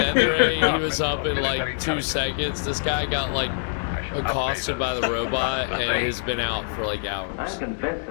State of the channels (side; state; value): right; silent; 62 dB below the other